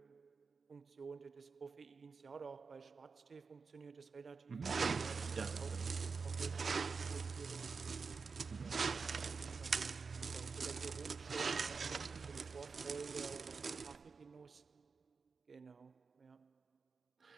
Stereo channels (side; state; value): left; quieter; 4.9 dB